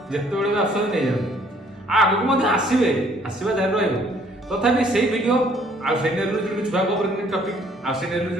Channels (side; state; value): both; normal; correlation 0.61